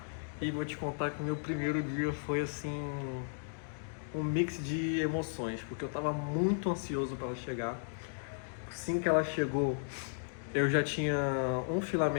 E vou te contar que o meu primeiro dia foi assim, um mix de emoções, porque eu estava muito ansioso para ela chegar. Assim que ela chegou, eu já tinha um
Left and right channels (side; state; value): right; silent; digital silence